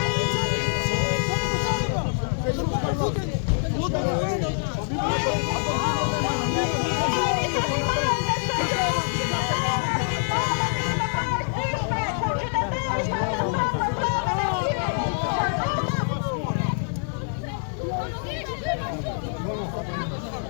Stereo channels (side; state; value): right; silent; 62 dB below the other